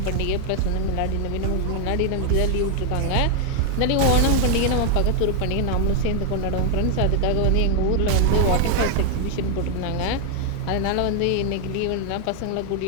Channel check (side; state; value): both; different; correlation 0.01